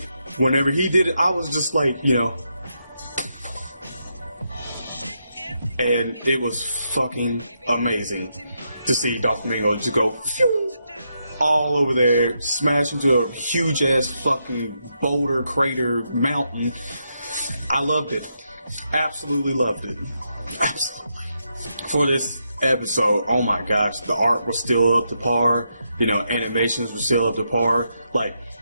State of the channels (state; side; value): inverted; both; correlation -0.82